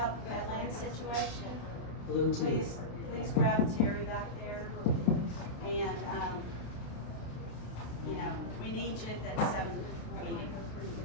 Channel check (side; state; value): right; late; 26 ms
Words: the Badlands situation, please grab Terry back there. And, we need you at that 7 meeting.